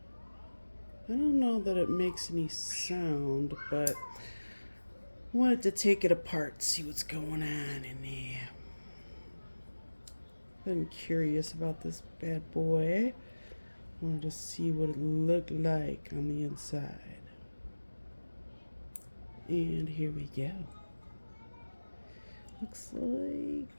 I don't know that it makes any sound, but I wanted to take it apart, see what's going on in there. Been curious about this bad boy. Wanted to see what it looked like on the inside. And here we go. Looks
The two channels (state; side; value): inverted; both; correlation -1.00